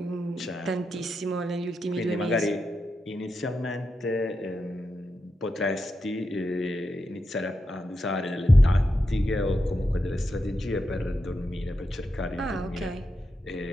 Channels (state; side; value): normal; both; correlation 0.87